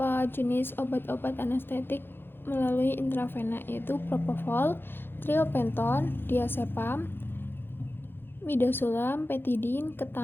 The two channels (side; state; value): right; late; 0.10 ms